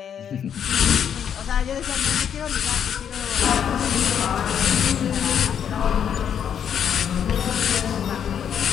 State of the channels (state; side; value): quieter; right; 8.5 dB